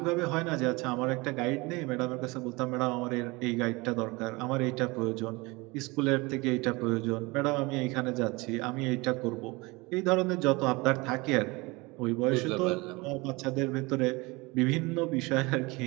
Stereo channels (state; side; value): quieter; left; 24.5 dB